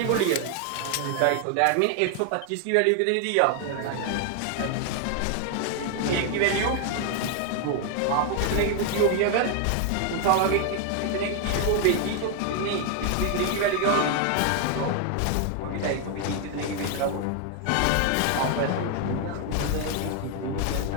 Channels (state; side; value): different; both; correlation 0.00